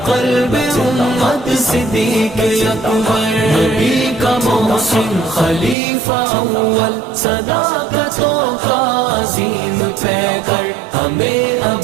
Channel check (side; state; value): left; drops out; at 5.8 s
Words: قلب امت صدیق اکبر نبی کا محسن خلیفہ اول صداقتوں کا عظیم پیکر ہمیں